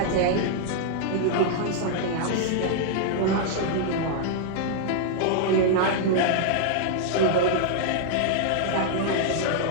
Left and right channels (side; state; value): both; different; correlation -0.01